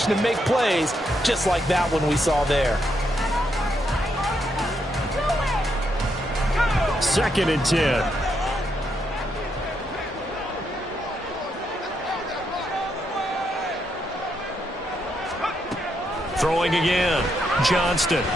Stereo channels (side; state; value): both; normal; correlation 0.79